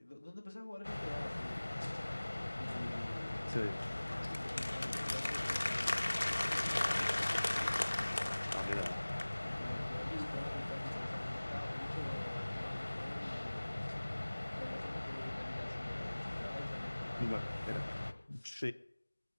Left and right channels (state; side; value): inverted; both; correlation -1.00